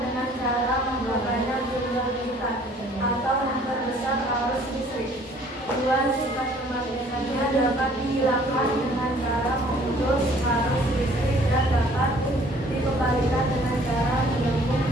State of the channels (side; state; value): both; normal; correlation 0.56